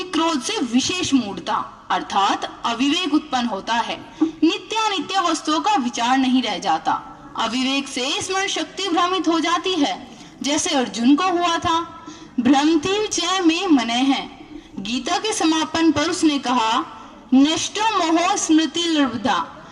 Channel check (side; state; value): both; identical; correlation 1.00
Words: क्रोध से विशेष मूढ़ता अर्थात अविवेक उत्पन्न होता है। नित्यानित्य वस्तुओं का विचार नहीं रह जाता। अविवेक से स्मरण शक्ति भ्रमित हो जाती है, जैसे अर्जुन को हुआ था। भ्रमति च में मने है। गीता के समापन पर उसने कहा, नष्टो मोह स्मृति लब्धा।